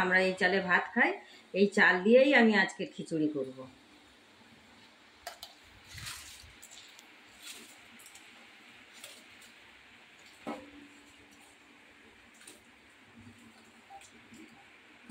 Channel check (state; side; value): identical; both; correlation 1.00